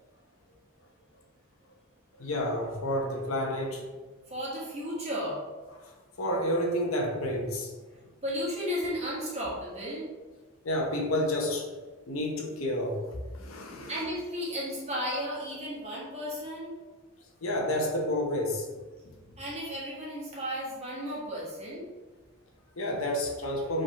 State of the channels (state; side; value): normal; both; correlation 0.06